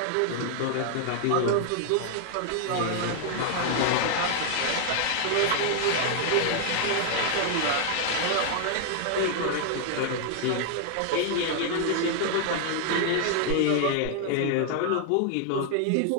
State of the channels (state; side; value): different; both; correlation 0.00